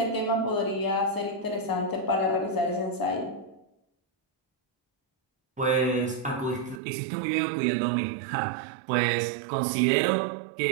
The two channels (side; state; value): left; drops out; at 6.8 s